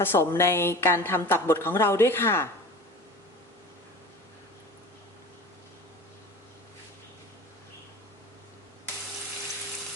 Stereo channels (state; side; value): normal; both; correlation 0.36